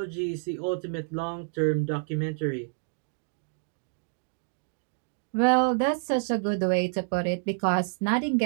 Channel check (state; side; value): silent; left; digital silence